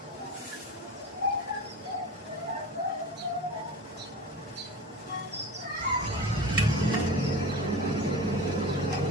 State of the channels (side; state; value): both; normal; correlation 0.32